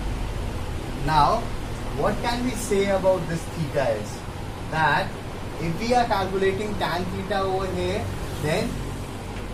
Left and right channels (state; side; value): identical; both; correlation 1.00